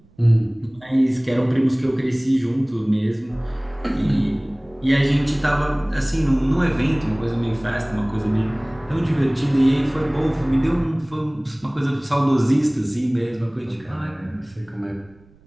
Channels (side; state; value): right; noise; rumble, 28 dB below the sound